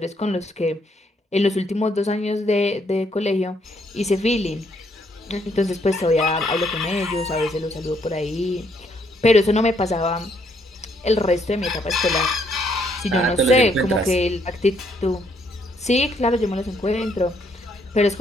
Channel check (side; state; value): both; normal; correlation 0.71